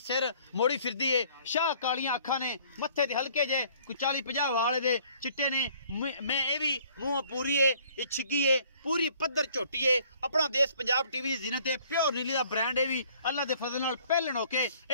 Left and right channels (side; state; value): both; inverted; correlation -0.58